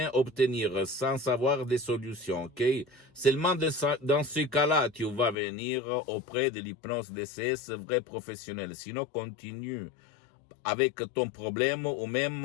obtenir, sans avoir des solutions, ok? Seulement dans ce cas-là, tu vas venir auprès de l'hypnose DCS vrai professionnel. Sinon, continue avec ton problème ou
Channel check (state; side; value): drops out; right; at 5.4 s